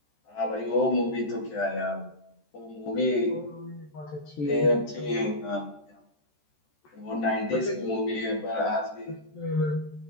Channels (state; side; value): late; right; 13 ms